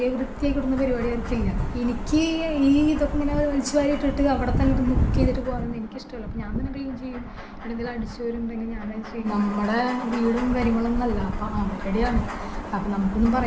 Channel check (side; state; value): both; identical; correlation 1.00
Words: വൃത്തിയായി കിട്ടുന്ന പരിപാടി അവർക്കില്ല. എനിക്ക് ഈ ഇതൊക്കെ ഇങ്ങനെ വലിച്ചു വാരിയിട്ടിട്ട് അവിടെ തന്നെ ഇരുന്ന് കുക്ക് ചെയ്തിട്ട് പോകാനൊന്നും എനിക്കിഷ്ടമല്ല. അപ്പോൾ ഞാൻ തന്നെ ക്ലീൻ ചെയ്യും. എന്തെങ്കിലും അടിച്ചു വരുന്നുണ്ടെങ്കിൽ ഞാൻ ചെയ്യും. നമ്മുടെ വീടും കാര്യങ്ങളൊന്നും അല്ല, അപ്പോൾ അവരുടെയാണ്. അപ്പോൾ നമുക്കൊന്നും